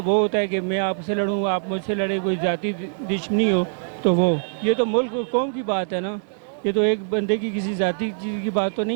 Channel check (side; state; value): left; silent; digital silence